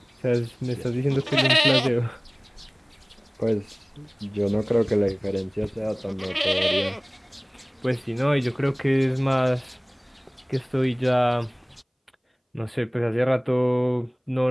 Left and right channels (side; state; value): both; identical; correlation 1.00